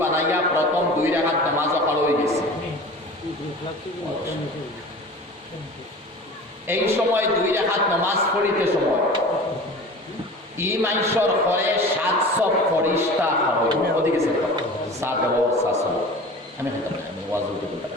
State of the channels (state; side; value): normal; both; correlation 0.38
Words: বানাইয়া প্রথম 2 রাকাত নামাজ পড়া হয়ে গেছে এই সময় 2 রাকাত নামাজ পড়িতে সময় ই মাইশর পরে 700 ফরিস্তা হয় ওদিকে গেছে 700 আমি ওয়াজ উঠে বলতে